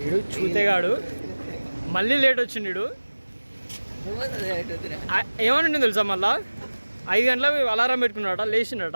వీడు చూతేగాడు మళ్ళీ లేట్ వచ్చిండు వీడు. ఏమని తెలుసా మళ్ళా 5 గంటలకు అలారం పెట్టుకున్నాడట,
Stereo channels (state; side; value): inverted; both; correlation -1.00